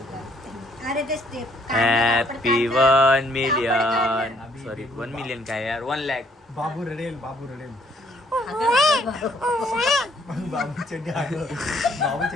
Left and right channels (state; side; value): normal; both; correlation 0.65